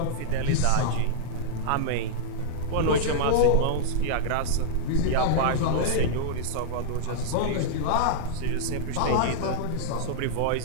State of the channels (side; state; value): both; different; correlation -0.02